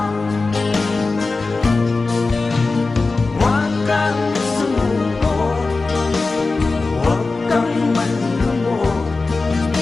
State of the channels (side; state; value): right; quieter; 3.7 dB